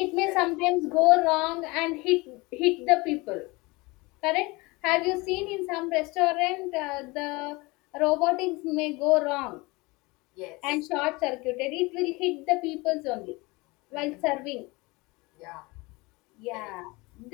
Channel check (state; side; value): quieter; right; 24.2 dB